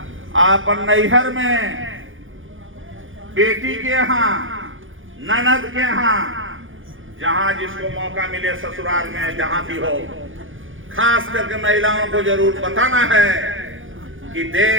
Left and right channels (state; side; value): late; left; 0.58 ms